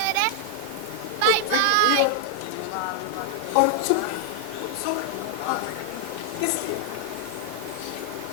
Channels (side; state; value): both; different; correlation 0.00